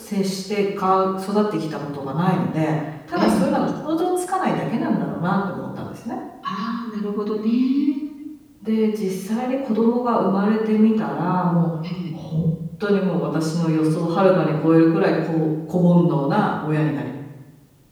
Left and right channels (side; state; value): both; identical; correlation 1.00